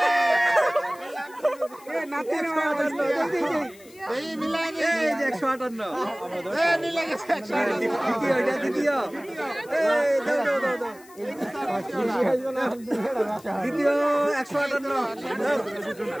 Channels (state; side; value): noise; left; hiss, 24 dB below the sound